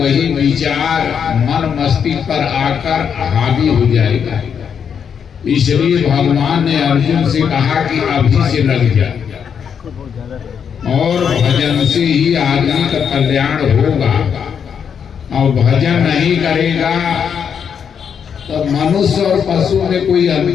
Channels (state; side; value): quieter; right; 7.4 dB